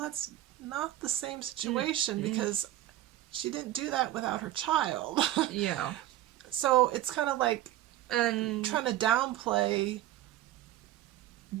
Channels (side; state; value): left; quieter; 14.1 dB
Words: not the same situation because she didn't do that without her child. Yeah. So it's kind of like trying to downplay